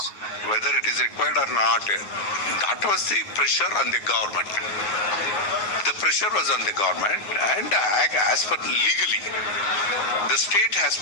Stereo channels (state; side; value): late; right; 9.7 ms